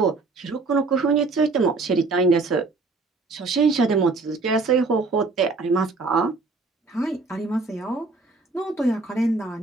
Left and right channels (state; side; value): quieter; left; 3.8 dB